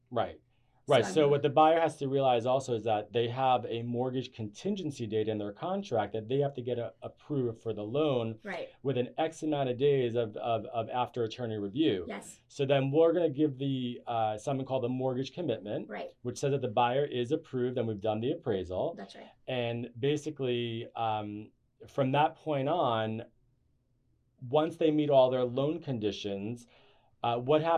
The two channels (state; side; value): identical; both; correlation 1.00